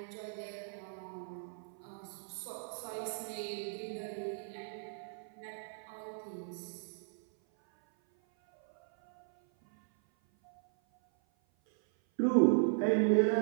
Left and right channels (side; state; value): left; silent; 53 dB below the other